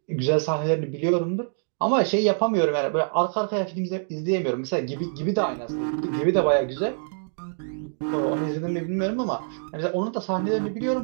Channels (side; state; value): left; silent; digital silence